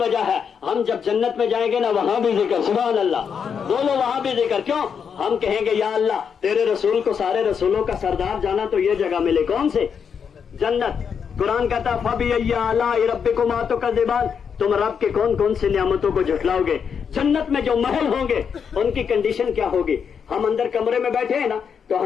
وجہ ہے ہم جب جنت میں جائیں گے نا وہاں بھی ذکر. سبحان اللہ. بولو وہاں بھی ذکر. کیوں؟ ہم کہیں گے یا اللہ تیرے رسول کو سارے رسولوں کا سردار جانا تو یہ جگہ ملے. کون سے؟ جنت. قرآن کہتا فَبِأَيِّ آلَاءِ رَبِّكُمَا تُكَذِّبَانِ، تم رب کے کون کون سی نعمتوں کو جھٹلاؤ گے. جنت میں جو محل ہوں گے ان کی کنڈیشن کیا ہوگی؟ ہم اندر کمرے میں بیٹھے ہیں نا تو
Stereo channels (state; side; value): quieter; right; 6.9 dB